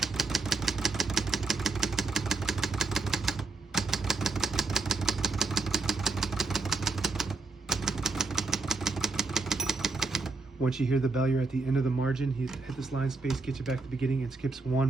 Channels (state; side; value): quieter; left; 3.7 dB